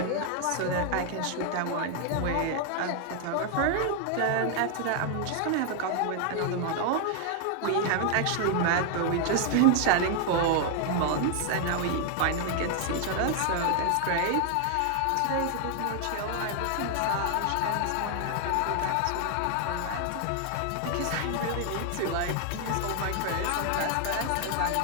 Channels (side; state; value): both; different; correlation 0.00